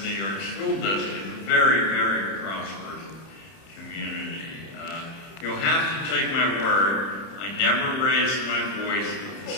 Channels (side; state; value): right; late; 31 ms